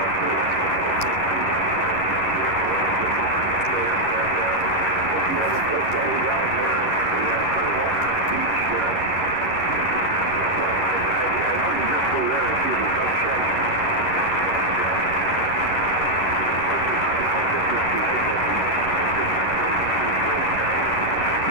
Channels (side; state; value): right; late; 11 ms